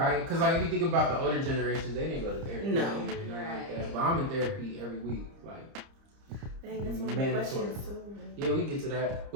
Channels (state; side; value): late; left; 30 ms